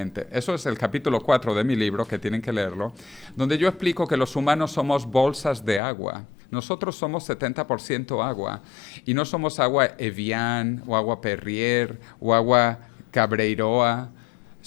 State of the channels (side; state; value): right; drops out; at 5.8 s